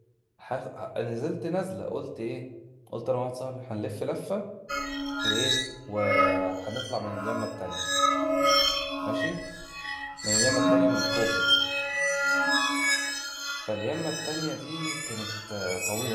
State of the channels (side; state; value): both; identical; correlation 1.00